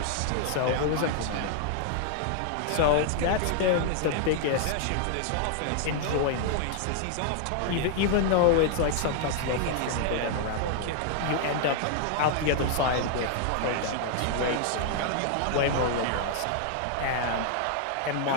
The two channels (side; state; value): both; different; correlation -0.01